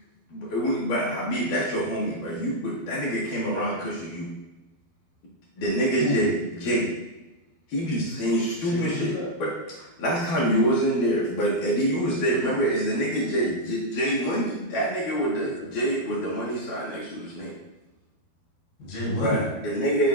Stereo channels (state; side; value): late; right; 12 ms